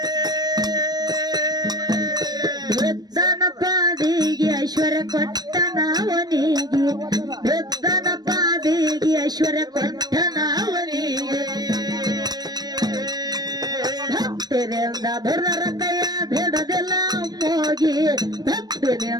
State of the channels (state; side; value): late; left; 0.19 ms